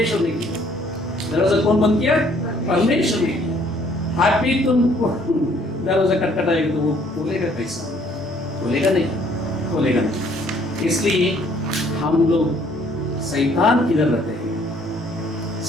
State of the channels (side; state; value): both; normal; correlation 0.62